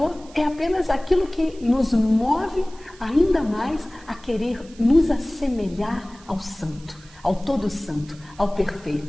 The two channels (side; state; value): right; noise; hiss, 24 dB below the sound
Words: é apenas aquilo que nos move ainda mais a querer nos assemelhar ao santo, ao todo santo, ao